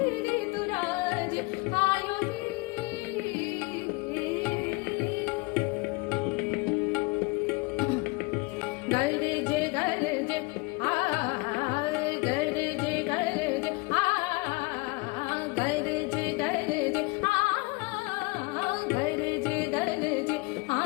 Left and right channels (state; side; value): quieter; right; 26.0 dB